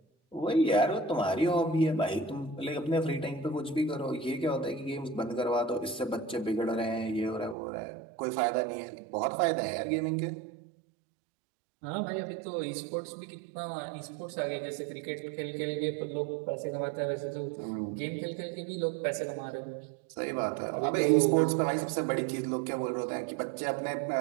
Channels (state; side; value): drops out; left; at 7.6 s